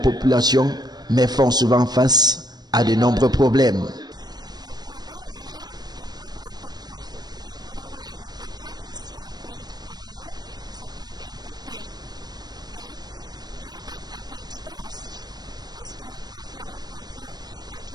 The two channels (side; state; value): left; late; 0.20 ms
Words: mais font souvent face à de nombreux problèmes. Les problèmes réels des peuples autochtones, surtout les Mbororo et les Baka, ici au pays du Cameroun, c'est le problème des terres et l'aide à identité aussi. parce que parfois on confond